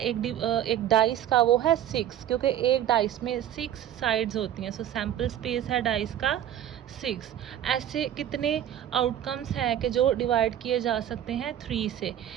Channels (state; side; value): quieter; left; 10.9 dB